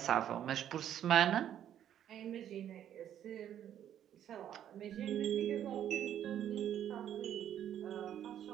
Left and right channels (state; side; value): quieter; left; 10.4 dB